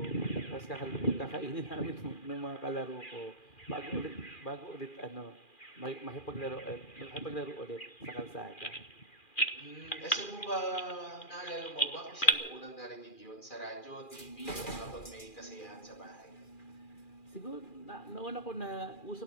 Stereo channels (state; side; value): late; right; 2.4 ms